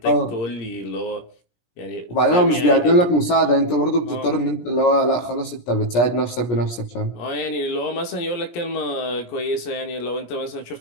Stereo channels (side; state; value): right; late; 17 ms